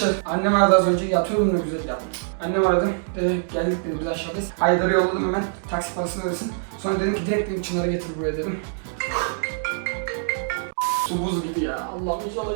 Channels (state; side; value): silent; left; digital silence